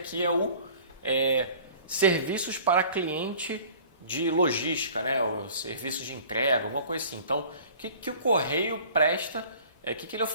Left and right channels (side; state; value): both; inverted; correlation -0.47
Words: é o serviços para cliente de logística, né? Os serviços de entrega, alguma coisa assim. Então, o que o Correio presta, o que ele